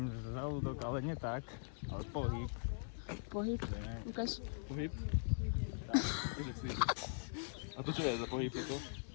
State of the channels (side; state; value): right; silent; digital silence